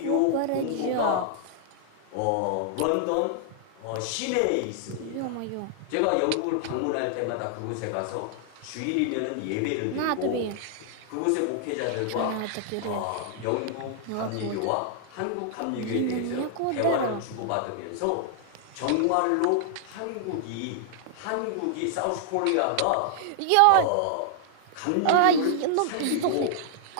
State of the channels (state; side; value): different; both; correlation -0.01